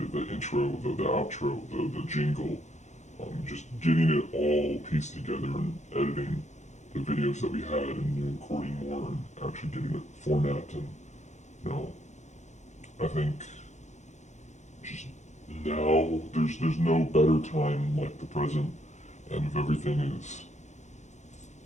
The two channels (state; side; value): late; right; 0.34 ms